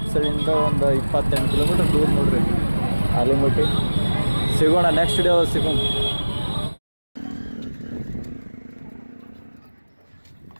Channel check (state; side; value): inverted; both; correlation -1.00